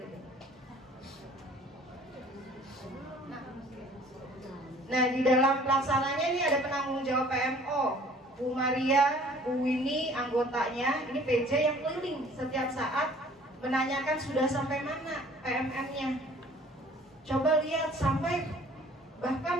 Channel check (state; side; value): normal; both; correlation 0.53